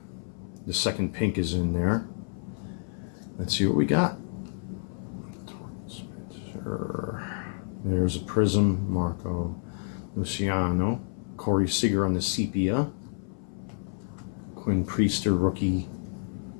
the second pink is in there. Let's see what we got. There's a Prism, Marco Luciano, Corey Seager on the sepia, Quinn Priester rookie.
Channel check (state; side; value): silent; right; 59 dB below the other